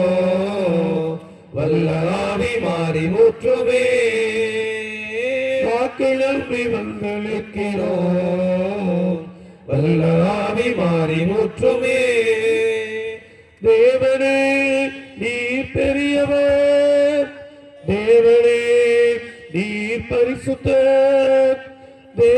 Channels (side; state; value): both; identical; correlation 1.00